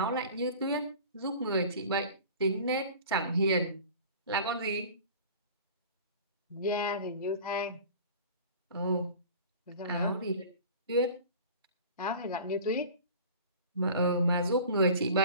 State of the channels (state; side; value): inverted; both; correlation -0.41